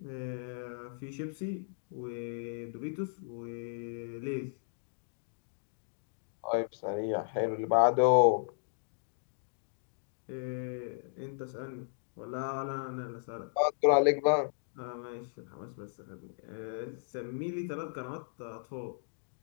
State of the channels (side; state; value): right; silent; digital silence